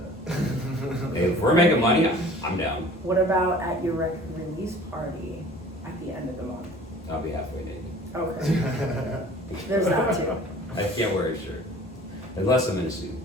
Hey, if we're making money, I'm down. What about at your record release party at the end of the month? I'll be halfway naked. Okay. There's that too. I can't wear a shirt. Unless I'm in a suit.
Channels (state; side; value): noise; right; hum, 24 dB below the sound